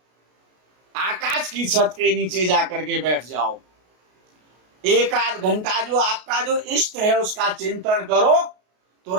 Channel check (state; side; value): late; left; 33 ms